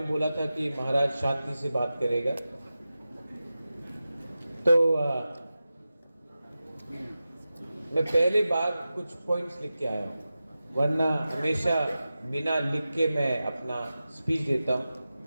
बोला था कि महाराज शांति से बात करेगा, तो मैं पहले बार कुछ पॉइंट्स लिख के आया हूँ, वरना हमेशा बिना लिख के मैं अपना स्पीच देता हूँ।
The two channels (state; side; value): inverted; both; correlation -0.94